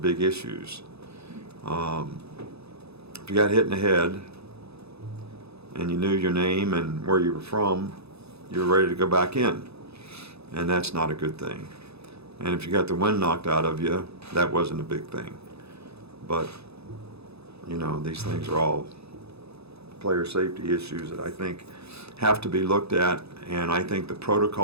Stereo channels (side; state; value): left; late; 0.79 ms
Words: big issues. If you got hit in the head and you knew your name and where you were from, you were ready to go back in, and that's not a good thing. And if you got the wind knocked out of you, that wasn't a big thing. But you know, these things are all player safety issues that I think have to be looked at, and I think the